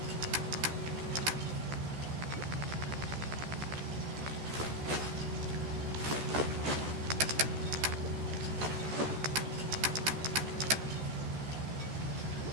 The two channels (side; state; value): left; late; 14 ms